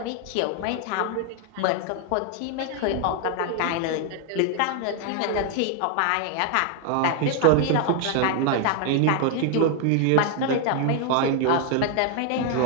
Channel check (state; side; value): different; both; correlation 0.00